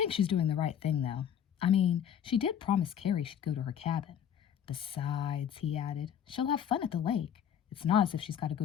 she's doing the right thing, though. I mean, she did promise Carrie she'd go to her cabin. Besides," he added, "she'll have fun at the lake. It's not as if she's got to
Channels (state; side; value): quieter; right; 9.0 dB